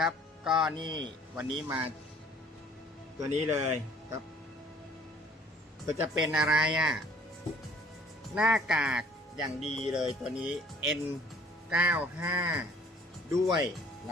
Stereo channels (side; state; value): both; normal; correlation 0.55